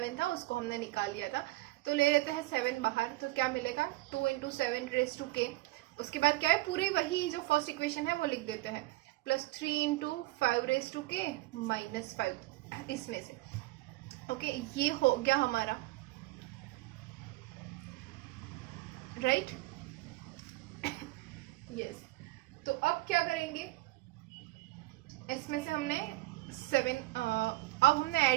था उसको हमने निकाल लिया था, तो ले लेते हैं 7 बाहर, तो क्या मिलेगा 2 इंटू 7 रेज टू के. उसके बाद क्या है, पूरे वही जो फर्स्ट इक्वेशन है वो लिख देते हैं, प्लस 3 इंटू 5 रेज टू के माइनस 5 इसमें से. ओके, ये हो गया हमारा, राइट. यस, तो अब क्या करेंगे, इसमें से हमने 7 अब हमने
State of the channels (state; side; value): quieter; left; 19.7 dB